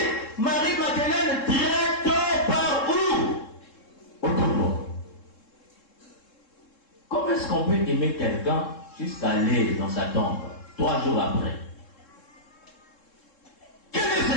Marie-Madeleine direct par où? Au tombeau. Comment est-ce qu'on peut aimer quelqu'un jusqu'à aller dans sa tombe 3 jours après? Quel est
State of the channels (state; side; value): late; right; 3.7 ms